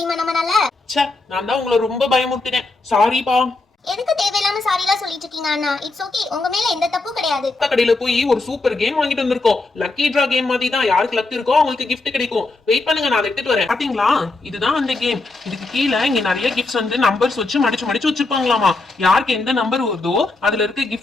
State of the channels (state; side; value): quieter; right; 3.3 dB